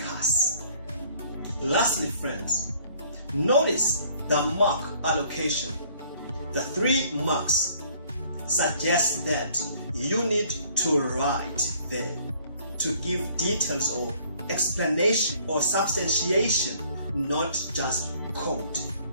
Lastly, friends, notice the mark allocation. The 3 marks suggest that you need to write there to give details or explanation or substantiation, not just quote.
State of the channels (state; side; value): inverted; both; correlation -0.59